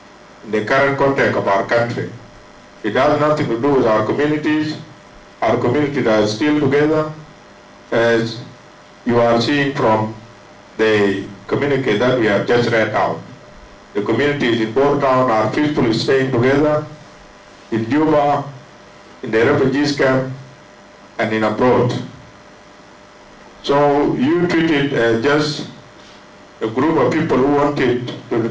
in the current context of our country. It has nothing to do with our communities. Our communities are still together, as you are seeing from the communique that we have just read out. The communities in Port Town are peacefully staying together, in Juba, in the refugees camp, and in abroad. So you treat it as just a group of people who wanted to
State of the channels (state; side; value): identical; both; correlation 1.00